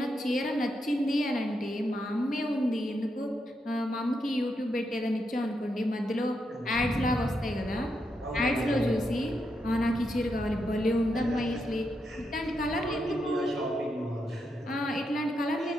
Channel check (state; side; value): normal; both; correlation 0.83